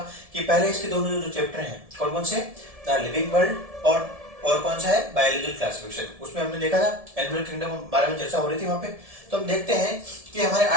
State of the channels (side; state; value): left; late; 1.7 ms